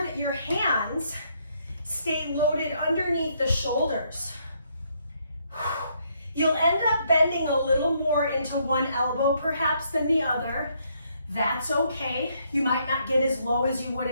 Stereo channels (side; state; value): both; inverted; correlation -0.72